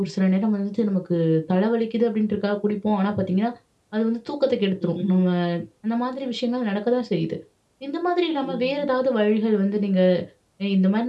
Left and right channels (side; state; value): both; identical; correlation 1.00